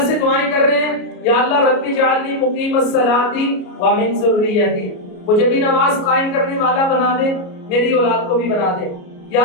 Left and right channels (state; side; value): late; right; 34 ms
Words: سے دعائیں کر رہے ہیں یا اللہ رب اجعلنی مقیم الصلاۃ ومن ذریتی، مجھے بھی نماز قائم کرنے والا بنا دے، میری اولاد کو بھی بنا دے۔ یا